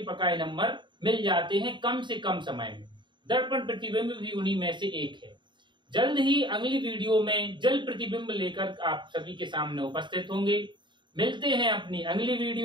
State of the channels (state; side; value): late; left; 0.23 ms